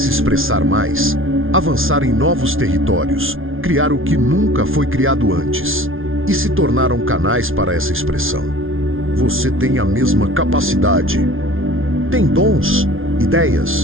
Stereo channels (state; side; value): late; left; 0.59 ms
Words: expressar mais, avançar em novos territórios, criar o que nunca foi criado antes, e se tornaram canais para essa expressão. Você tem a mesma capacidade. Tem dons,